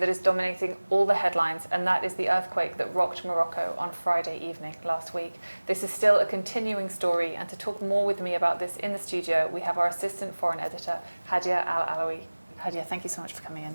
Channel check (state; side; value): inverted; both; correlation -1.00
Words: is dominating all the headlines, and that is the earthquake that rocked Morocco on Friday evening last week. This is still a continuing story, and to talk more with me about this in the studio we have our assistant foreign editor, Hadya Al Alawi. Hadya, thank you so much for coming in.